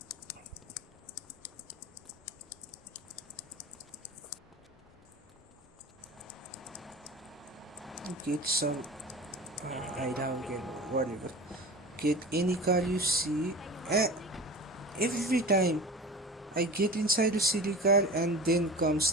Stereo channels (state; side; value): normal; both; correlation 0.35